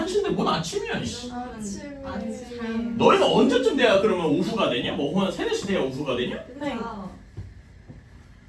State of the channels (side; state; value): both; identical; correlation 1.00